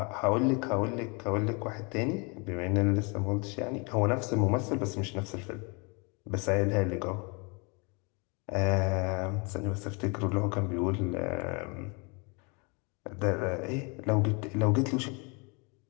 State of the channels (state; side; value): quieter; right; 31.7 dB